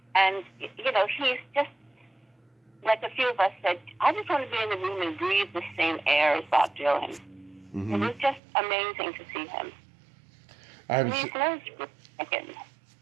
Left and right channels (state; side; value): drops out; left; at 8.4 s